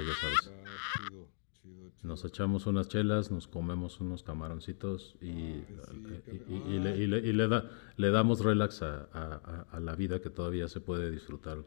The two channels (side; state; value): right; silent; digital silence